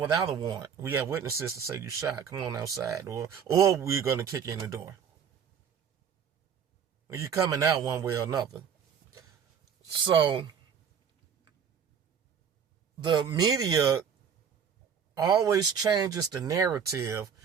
a warrant? We have witnesses to say you shot. Come on outside. Or we're going to kick you in the door. You're coming out one way or another. So, the media always changes the narrative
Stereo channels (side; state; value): left; quieter; 7.4 dB